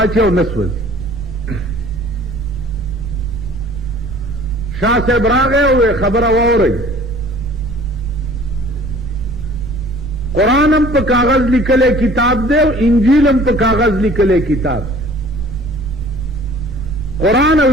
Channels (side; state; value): right; noise; rumble, 11 dB below the sound